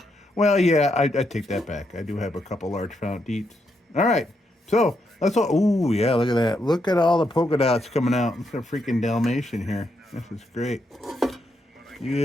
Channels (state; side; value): normal; both; correlation 0.80